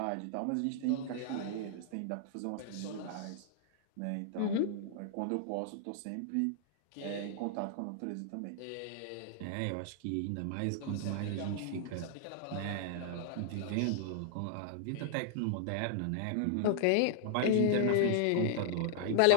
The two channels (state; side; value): different; both; correlation -0.01